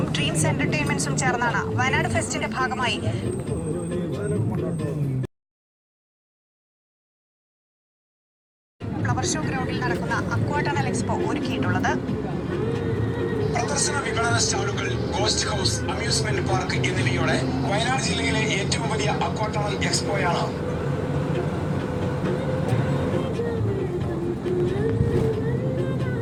ഡ്രീംസ് എന്റർടൈൻമെന്റ്സും ചേർന്നാണ് വയനാട് ഫെസ്റ്റിന്റെ ഭാഗമായി ഫ്ലവർ ഷോ ഗ്രൗണ്ടിൽ നടക്കുന്ന അക്വാടണൽ എക്സ്പോ ഒരുക്കിയിട്ടുള്ളത്. പ്രദർശന വിപണന സ്റ്റാളുകൾ, ഗോസ്റ്റ് ഹൗസ്, അമ്യൂസ്മെന്റ് പാർക്ക് എന്നിവയോടെ വയനാട് ജില്ലയിലെ ഏറ്റവും വലിയ അക്വാടണൽ എക്സ്പോയാണ്.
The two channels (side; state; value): both; identical; correlation 1.00